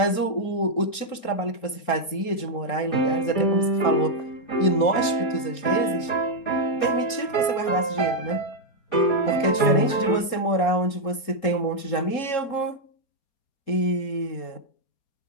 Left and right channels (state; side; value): late; right; 3.7 ms